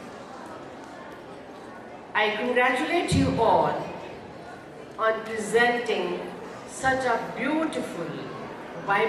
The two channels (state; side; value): identical; both; correlation 1.00